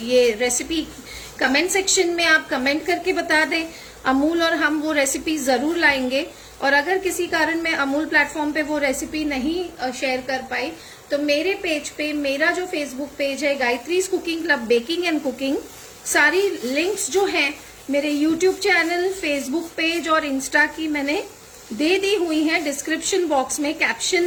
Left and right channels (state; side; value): identical; both; correlation 1.00